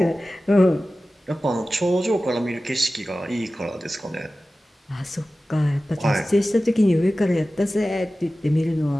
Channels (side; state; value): both; normal; correlation 0.96